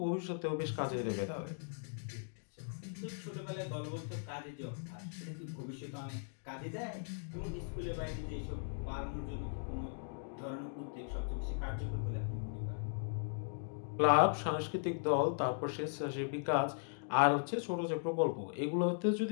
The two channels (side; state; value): right; silent; digital silence